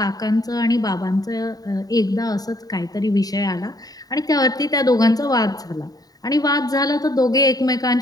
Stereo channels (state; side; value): late; right; 0.18 ms